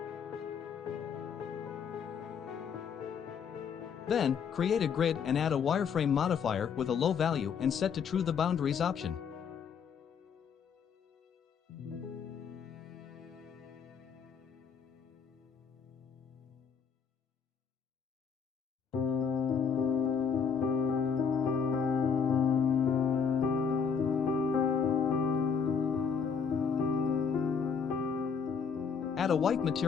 Then, create a grid and add a wireframe modifier with a low value and set to true the boundaries option. Add a white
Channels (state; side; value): quieter; right; 6.5 dB